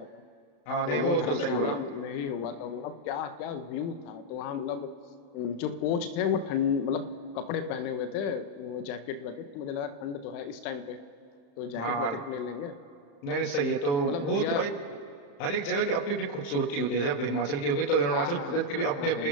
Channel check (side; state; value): right; late; 35 ms